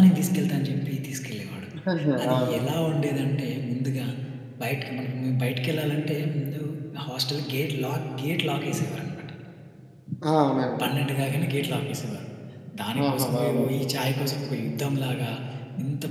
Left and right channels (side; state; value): both; identical; correlation 1.00